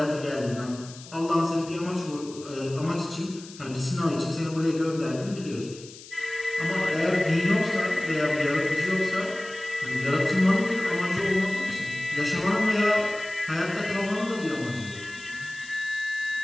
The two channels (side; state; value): left; noise; hiss, 17 dB below the sound